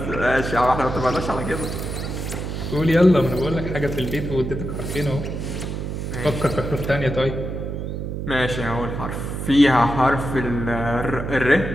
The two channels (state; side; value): noise; right; hum, 5 dB below the sound